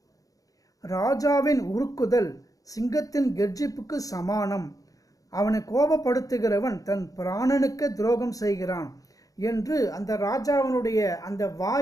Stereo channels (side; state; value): right; late; 0.17 ms